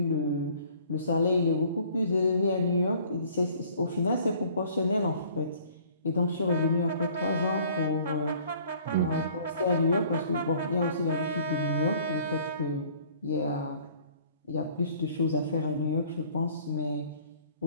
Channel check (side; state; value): both; inverted; correlation -0.55